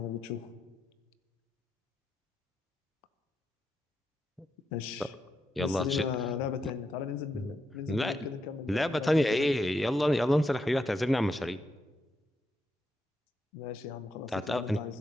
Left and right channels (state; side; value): normal; both; correlation 0.83